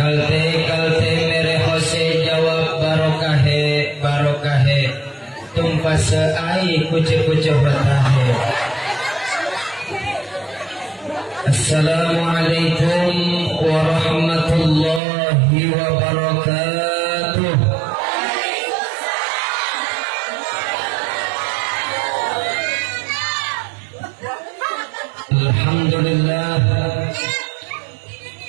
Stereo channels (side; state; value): left; drops out; at 15.0 s